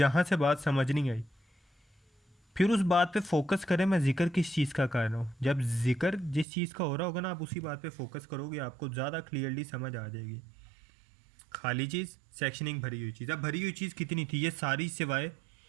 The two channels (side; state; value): left; drops out; at 6.5 s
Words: से बात समझ नहीं आई फिर उस बात पे फोकस करें, मैं जिक्र किस चीज़ का कर रहा हूँ। जब जिक्र जिस चीज़ का हो रहा होगा ना, आप उसी बात पे फोकस करोगे, आपको ज़्यादा क्लियरली समझ आ जाएगी। खाली चीज़, सेक्शनिंग, भरी हुई चीज़। अब भरी हुई चीज़ कितनी थी? ये सारी सिवाय